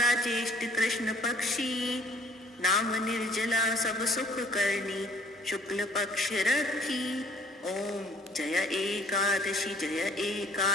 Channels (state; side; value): normal; both; correlation 0.59